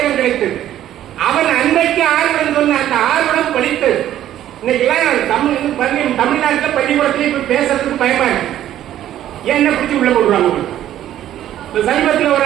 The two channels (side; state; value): left; quieter; 12.1 dB